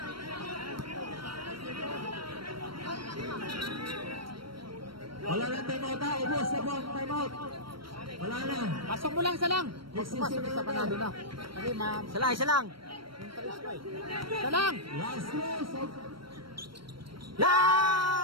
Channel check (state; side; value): late; left; 0.74 ms